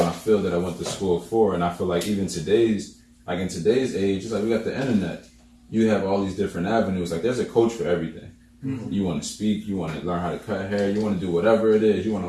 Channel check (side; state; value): both; identical; correlation 1.00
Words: field that I went to school for. And I feel like even in today's age, it's like we got the internet. You have all these different avenues. Like, there's a coach for everything. Mm-hmm. You want to speak, you want to learn how to cut hair, you want to do whatever it is, you want to